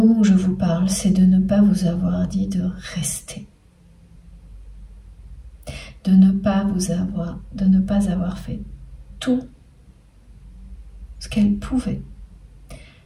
où je vous parle, c'est de ne pas vous avoir dit de rester. De ne pas avoir fait tout ce qu'elle pouvait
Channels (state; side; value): identical; both; correlation 1.00